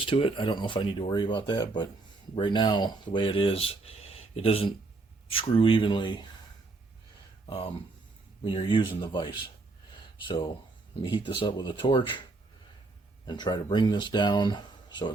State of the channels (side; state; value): left; quieter; 3.5 dB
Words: to it. I don't know if I need to worry about that, but right now, the way it is, it doesn't screw evenly when you're using the vise. So let me heat this up with a torch and try to bring this down so it